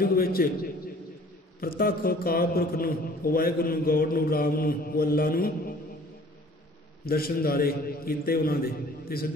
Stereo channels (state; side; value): normal; both; correlation 0.52